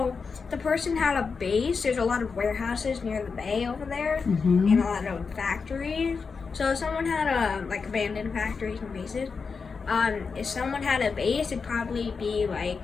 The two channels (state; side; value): quieter; right; 5.1 dB